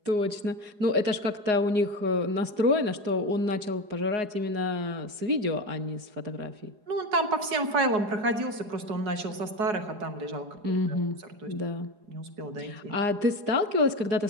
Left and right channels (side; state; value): left; late; 4.8 ms